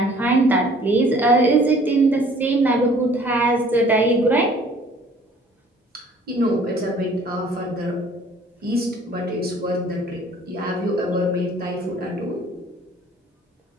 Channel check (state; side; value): normal; both; correlation 0.55